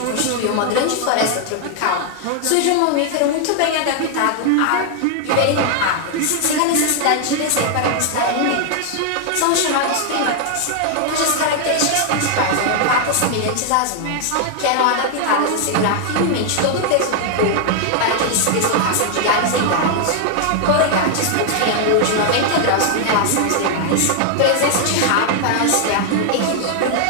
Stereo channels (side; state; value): both; different; correlation 0.00